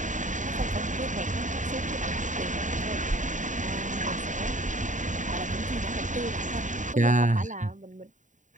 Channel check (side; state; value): left; late; 0.36 ms